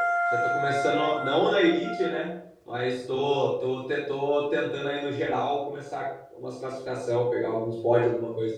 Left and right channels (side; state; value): both; identical; correlation 1.00